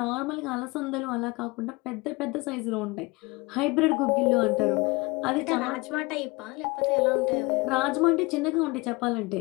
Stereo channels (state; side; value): quieter; right; 24.9 dB